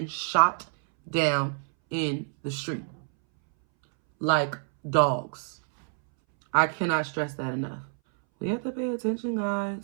shot down in the street like dogs. I cannot stress that enough. We have to pay attention,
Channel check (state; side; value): silent; left; 60 dB below the other